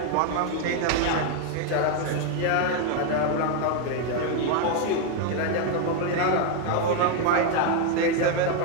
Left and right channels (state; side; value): different; both; correlation 0.01